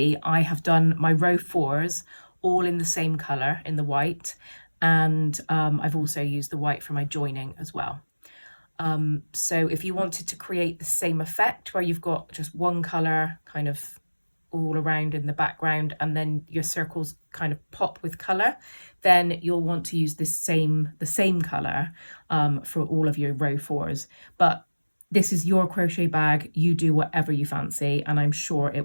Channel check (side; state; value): both; inverted; correlation -1.00